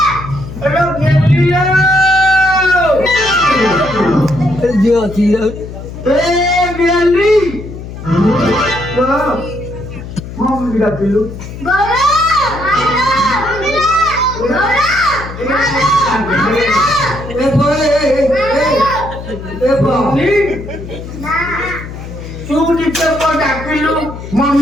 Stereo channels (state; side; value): noise; left; hum, 11 dB below the sound